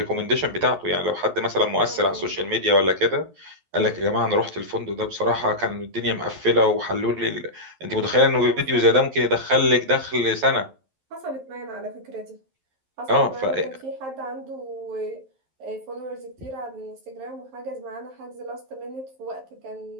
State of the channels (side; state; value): left; late; 11 ms